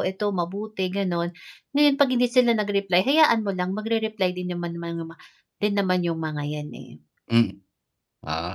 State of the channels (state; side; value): identical; both; correlation 1.00